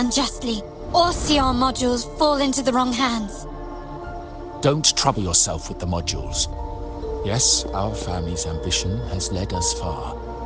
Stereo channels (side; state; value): both; identical; correlation 1.00